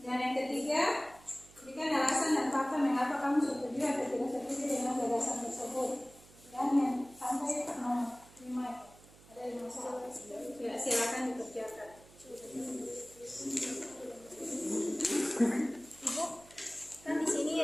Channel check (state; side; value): noise; right; hum, 24 dB below the sound